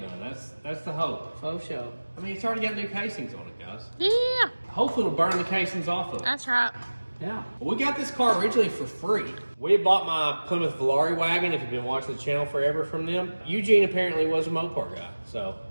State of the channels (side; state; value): both; inverted; correlation -1.00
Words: That's the hope. Faux show. I mean, it's already got new casings on it, guys. Yeah. Hopefully it'll burn the casings off of it. That's right. Yeah. Well, we got this car originally for free. We had bought my Plymouth Valari wagon, if you've been watching the channel forever from them. Eugene apparently was a Mopar guy. So